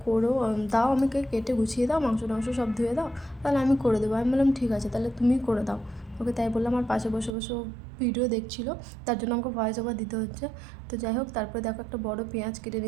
করো, দাও আমাকে কেটে গুছিয়ে দাও, মাংস সব ধুয়ে দাও, তাহলে আমি করে দেবো। আমি বললাম ঠিক আছে তাহলে তুমি করে দাও। ওকে তাই বললাম, আর পাশে বসে বসে ভিডিও দেখছিল, তার জন্য আমাকে ভয়েস ওভার দিতে হচ্ছে। তো যাই হোক, তারপরে দেখো একটা বড় পেঁয়াজ কেটে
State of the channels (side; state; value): left; drops out; at 7.4 s